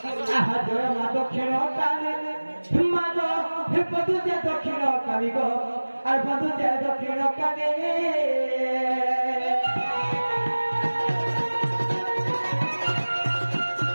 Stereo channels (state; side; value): inverted; both; correlation -1.00